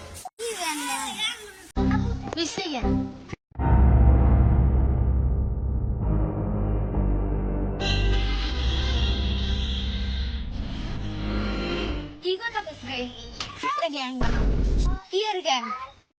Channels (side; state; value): both; identical; correlation 1.00